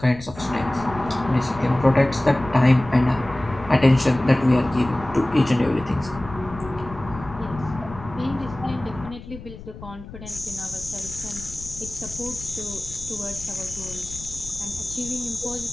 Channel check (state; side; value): noise; left; rumble, 14 dB below the sound